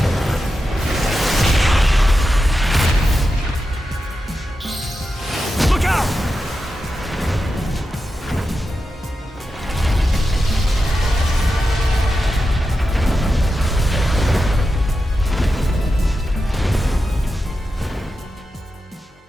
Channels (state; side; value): normal; both; correlation 0.90